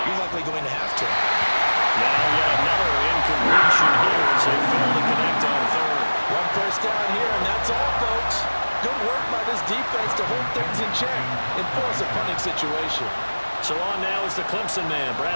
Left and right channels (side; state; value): both; inverted; correlation -1.00